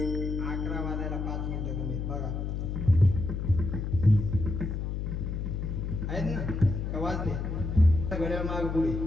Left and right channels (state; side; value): noise; left; hum, 3 dB below the sound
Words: घड्याळ माग पुढे